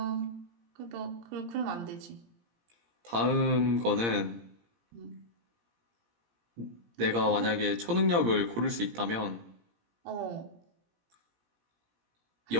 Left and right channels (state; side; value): late; left; 17 ms